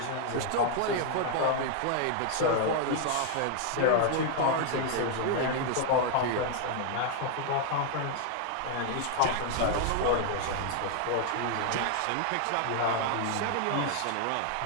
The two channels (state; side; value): different; both; correlation 0.00